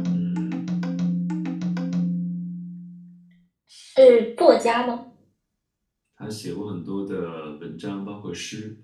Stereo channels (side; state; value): both; identical; correlation 1.00